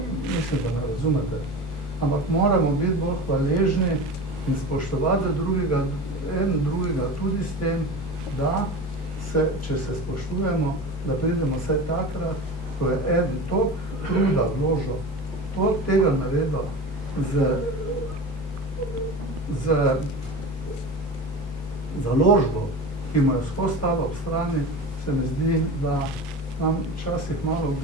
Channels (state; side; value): normal; both; correlation 0.30